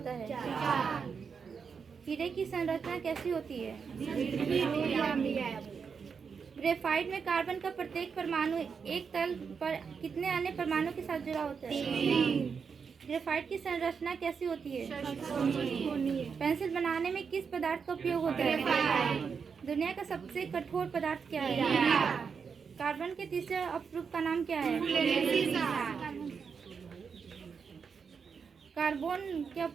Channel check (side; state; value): left; quieter; 6.0 dB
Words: है? हीरे की संरचना कैसी होती है? ग्रेफाइट में कार्बन का प्रत्येक परमाणु एक तल पर कितने अन्य परमाणु के साथ जुड़ा होता है? ग्रेफाइट की संरचना कैसी होती है? पेंसिल बनाने में किस पदार्थ का उपयोग होता है? दुनिया का सबसे कठोर पदार्थ क्या है? कार्बन के तीसरे अपरूप का नाम क्या है? कार्बन के